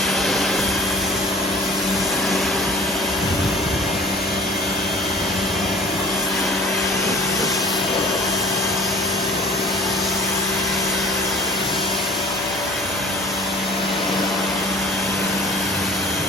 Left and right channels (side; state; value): both; normal; correlation 0.44